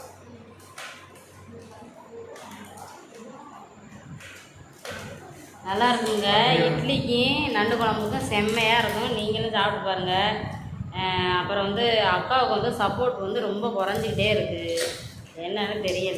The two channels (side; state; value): both; identical; correlation 1.00